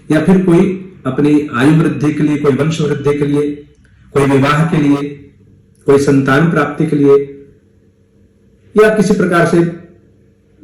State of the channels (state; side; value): identical; both; correlation 1.00